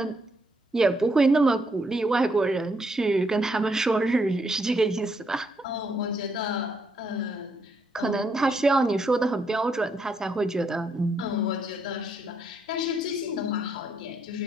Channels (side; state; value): both; normal; correlation 0.75